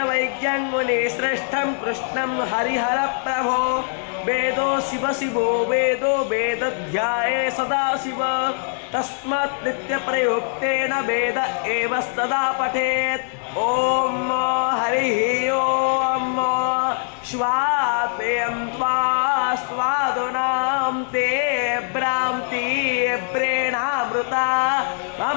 मुनिश्रेष्ठं कृष्णं हरिहर प्रभो। वेदो शिव शिवो वेदो वेदध्याये सदा शिव। तस्मात् नित्यप्रयुक्तेन वेद एव सदा पठेत्। ओम हरिः ओम स्वाद्वयं त्वा स्वादुनां ते भ्रान्ति प्रेणामृता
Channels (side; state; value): right; silent; 64 dB below the other